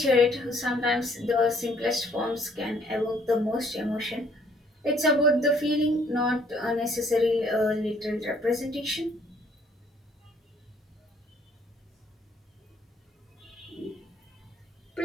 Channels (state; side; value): normal; both; correlation 0.63